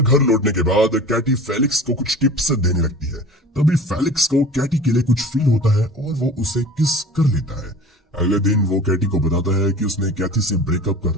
लौटने के बाद कैटी फेलिक्स को कुछ टिप्स देने लगती है। तभी फेलिक्स को कैटी के लिए कुछ फील होता है और वो उसे किस कर लेता है। अगले दिन वो कैटी को बताता है कि उसने कैथी से ब्रेकअप कर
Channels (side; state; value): both; normal; correlation 0.40